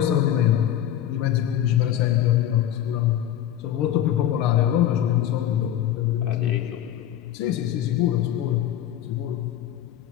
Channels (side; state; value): right; quieter; 11.3 dB